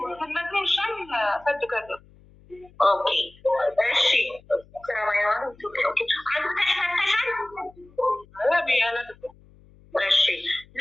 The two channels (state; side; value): noise; left; hum, 26 dB below the sound